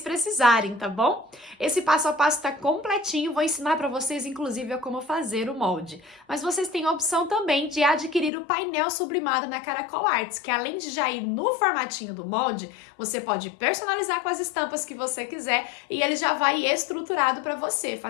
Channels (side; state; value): right; drops out; at 8.3 s